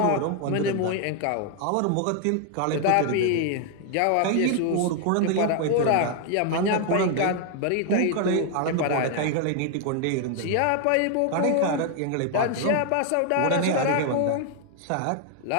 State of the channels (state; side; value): different; both; correlation 0.00